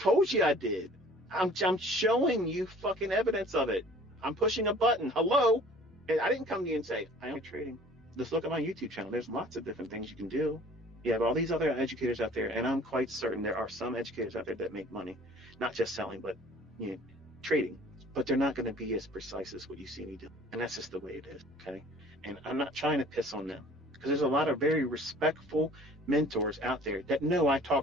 you I did. I'm showing you fucking evidence of it. I'm pushing a button. Hello? And I didn't come to you and say, I am trading. Just look at my YouTube channel. There's lots of different things you can do. You have all these other educators out there, and I'm quite certain there are some educators out there that make money, not just selling, but trading. But they're not going to be as precise as what you see me do. And that's just the way it is, okay? And I'm not trying to piss on them, because there's a lot of very respectful mentors out there that know I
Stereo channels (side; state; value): both; normal; correlation 0.50